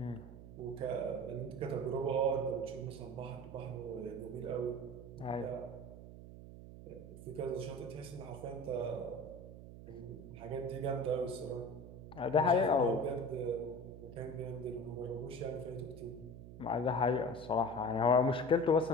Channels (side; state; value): right; noise; hum, 14 dB below the sound